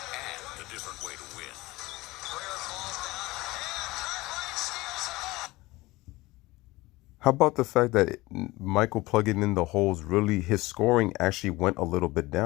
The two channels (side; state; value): right; quieter; 20.4 dB